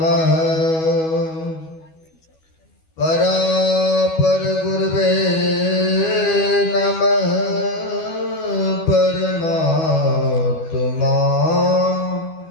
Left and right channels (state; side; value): late; right; 12 ms